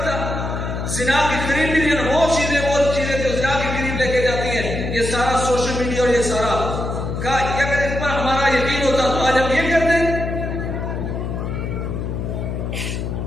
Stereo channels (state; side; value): noise; left; hum, 4 dB below the sound